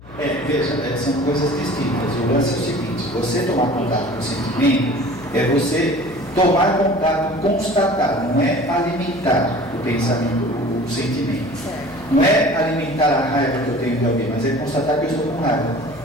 Veja, são coisas distintas. O lance é o seguinte: você tomar contato com o sentimento é você tomar contato, constatar, não é alimentar o pensamento, o sentimento. Não é alimentar a raiva que eu tenho de alguém, mas é constatar que eu estou com raiva.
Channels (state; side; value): noise; left; hum, 21 dB below the sound